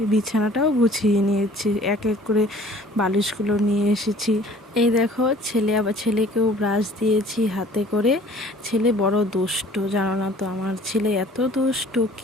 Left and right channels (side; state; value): both; normal; correlation 0.51